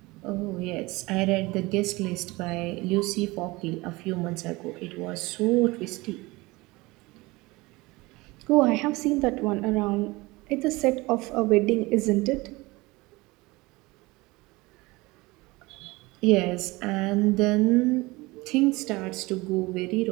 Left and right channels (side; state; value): left; quieter; 22.3 dB